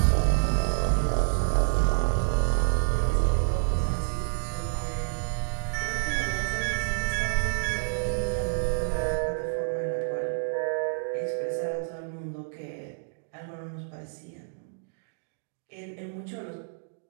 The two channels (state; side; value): silent; left; digital silence